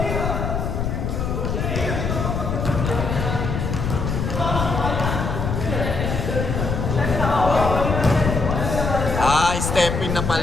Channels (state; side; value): noise; left; rumble, 2 dB below the sound